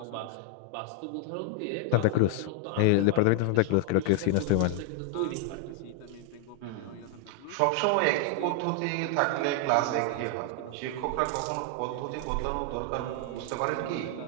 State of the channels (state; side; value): different; both; correlation 0.00